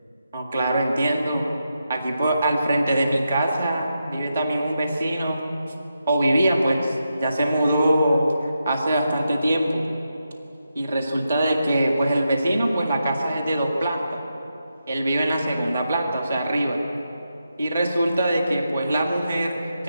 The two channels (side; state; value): both; inverted; correlation -0.86